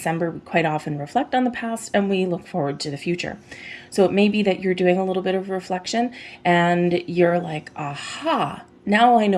we quite often reflect on the past and we look forward to the future. So it may be that you're doing a little bit of reflection and you're like, aha, now I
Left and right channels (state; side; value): identical; both; correlation 1.00